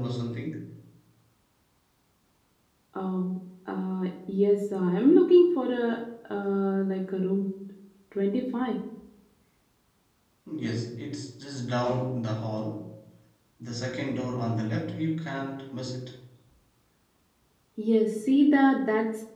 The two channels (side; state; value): both; identical; correlation 1.00